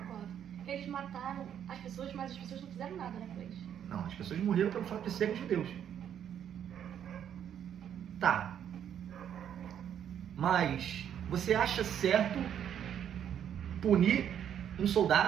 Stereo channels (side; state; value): left; quieter; 9.4 dB